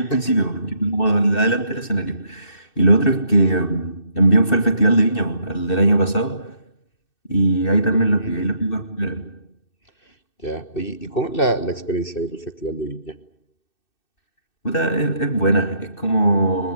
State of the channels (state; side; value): late; right; 2.6 ms